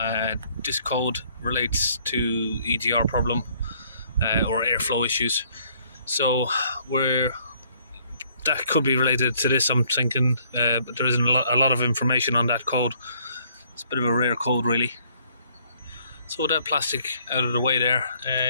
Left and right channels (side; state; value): both; inverted; correlation -0.63